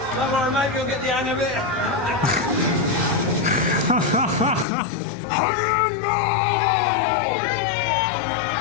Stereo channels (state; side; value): drops out; right; at 4.7 s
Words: Don't worry, mate, you'll get the hang of it.